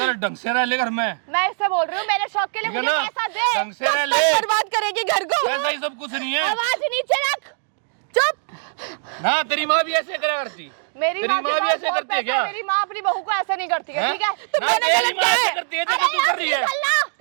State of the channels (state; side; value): silent; left; 64 dB below the other